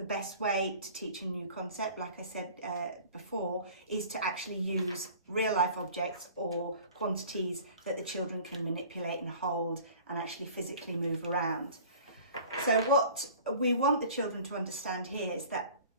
best way to teach a new concept, like I said before, is to actually use real life objects or quantities that the children can manipulate and hold and actually physically move around. So what we want the children to understand here is that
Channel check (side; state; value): both; inverted; correlation -0.45